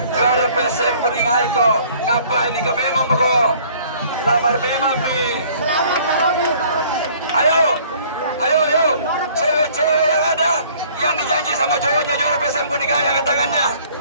juara BPSM kuningai ko. Ngapain ini ka memang ko? Lamar memang bi. Ayo. Cewek-cewek yang ada yang dijanji sama cowoknya juara PSM Kuningan yang angkat tangannya.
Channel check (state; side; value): inverted; both; correlation -0.56